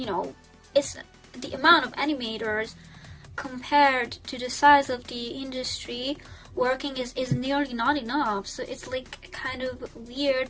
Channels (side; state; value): both; identical; correlation 1.00